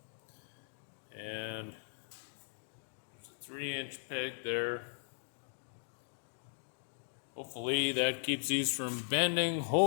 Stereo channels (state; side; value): silent; right; digital silence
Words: And there's a 3-inch peg there. Hopefully that keeps these from bending.